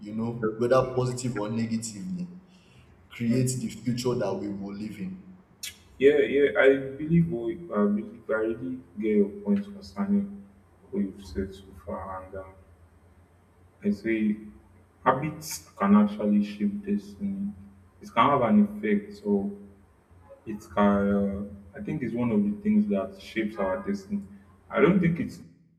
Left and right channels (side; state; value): both; identical; correlation 1.00